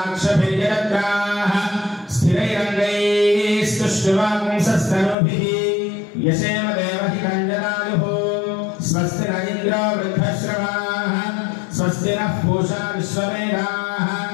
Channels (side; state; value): right; drops out; at 5.2 s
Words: స్థిరైరంగైః స్తుష్టువాగుంసస్తనూభిః యశేమ దేవహి కంజనాయుః. స్వస్తి న ఇంద్రో వృద్ధశ్రవాః స్వస్తి నః పూషా విశ్వవేదాః